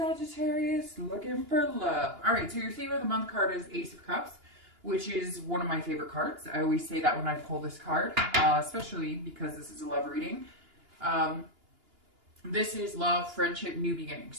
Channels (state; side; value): late; left; 2.9 ms